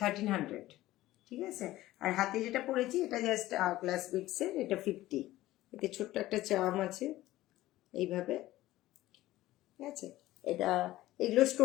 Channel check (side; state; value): right; quieter; 16.1 dB